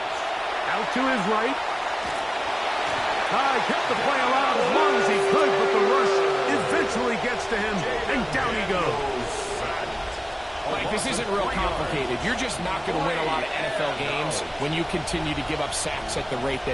Out to his right. Kept the play alive as long as he could, but the rush eventually gets to him, and down he goes. Mike, this isn't real complicated. You're just not going to win a lot of NFL games when you continue to give up sacks at the rate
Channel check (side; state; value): both; identical; correlation 1.00